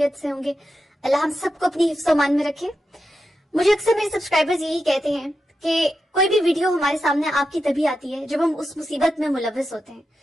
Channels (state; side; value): normal; both; correlation 0.88